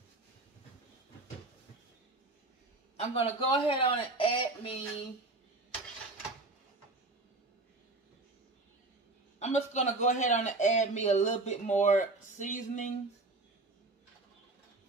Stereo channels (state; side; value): quieter; left; 3.1 dB